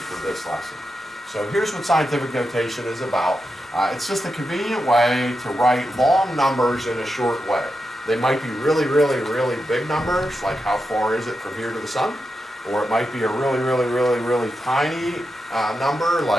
this lesson. So here's what scientific notation is about. It's just a convenient way to write long numbers in a short way. They might be really, really, really big numbers, like how far is it from here to the sun? Or it might be a really, really, really, really tiny number,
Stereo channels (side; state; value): both; normal; correlation 0.88